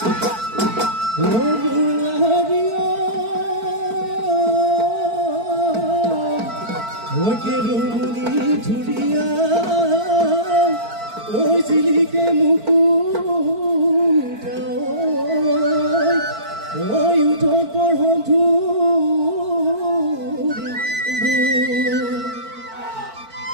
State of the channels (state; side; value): late; left; 4.5 ms